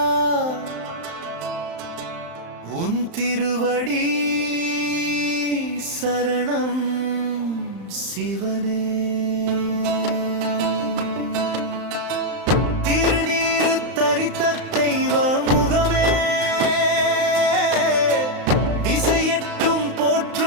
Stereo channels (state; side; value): late; left; 35 ms